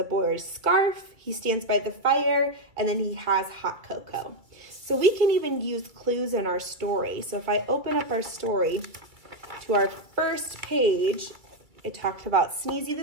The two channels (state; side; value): late; left; 2.2 ms